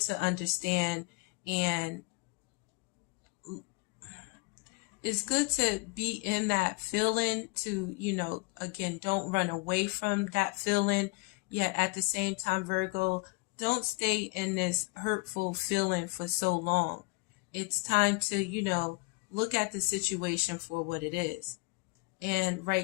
understand, and it's good to be in that feeling, to, again, don't run away from that feeling. Yet at the same time, Virgo, don't stay in this hurtful feeling for so long. It's time to, look at the situation for what it is. And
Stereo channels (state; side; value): quieter; right; 26.0 dB